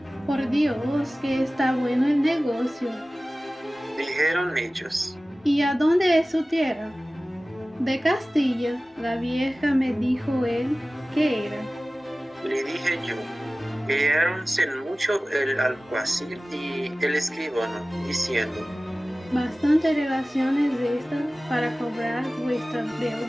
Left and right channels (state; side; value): normal; both; correlation 0.97